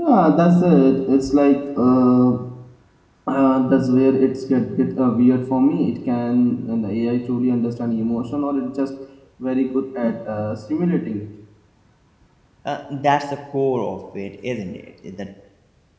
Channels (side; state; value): both; identical; correlation 1.00